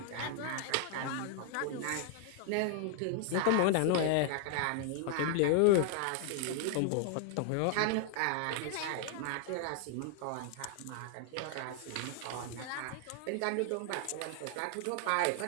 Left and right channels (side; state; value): both; different; correlation 0.00